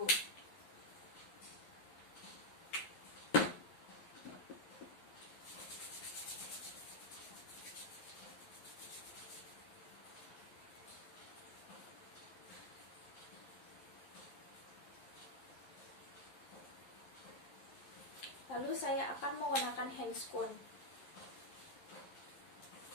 Lalu saya akan menggunakan handscoon.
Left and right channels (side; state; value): right; late; 11 ms